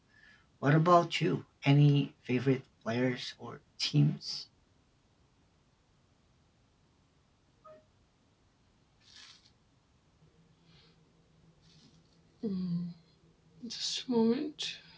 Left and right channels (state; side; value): identical; both; correlation 1.00